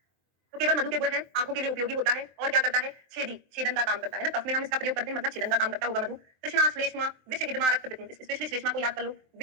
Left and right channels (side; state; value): left; late; 23 ms